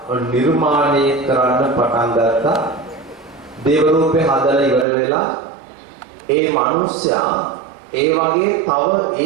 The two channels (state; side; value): drops out; left; at 4.9 s